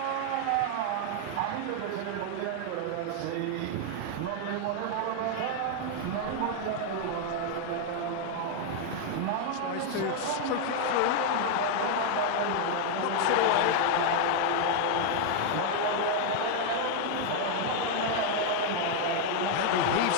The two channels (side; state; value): both; different; correlation 0.00